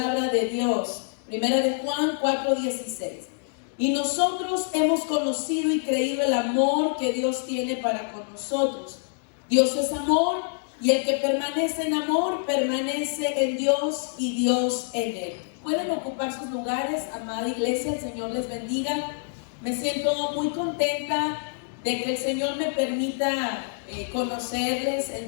de Dios, primera de Juan 4:16. Y nosotros hemos conocido y creído el amor que Dios tiene para con nosotros. Dios es amor, y el que permanece en amor, permanece en Dios y Dios en él. Pueden ocupar sus lugares, amada iglesia, el Señor les bendiga. Me siento muy contenta de que el Señor me permita conocerles el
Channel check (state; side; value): silent; right; 61 dB below the other